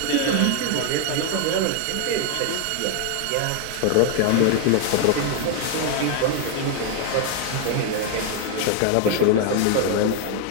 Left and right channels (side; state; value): both; different; correlation 0.00